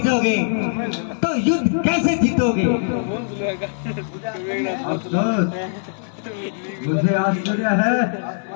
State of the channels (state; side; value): silent; right; digital silence